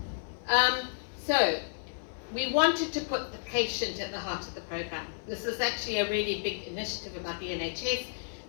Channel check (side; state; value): right; silent; 57 dB below the other